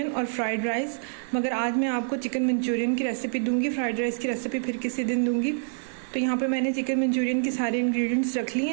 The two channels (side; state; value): left; silent; 60 dB below the other